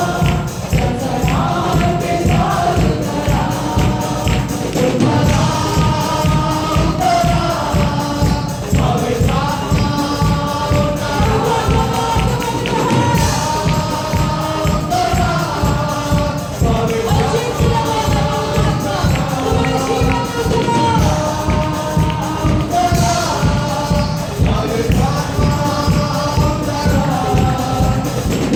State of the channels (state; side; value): identical; both; correlation 1.00